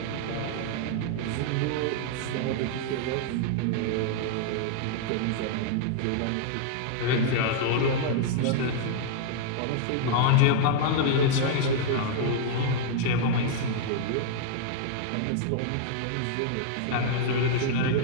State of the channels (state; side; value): different; both; correlation -0.01